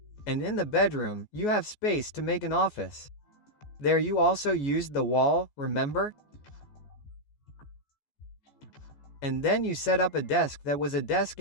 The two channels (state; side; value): late; right; 14 ms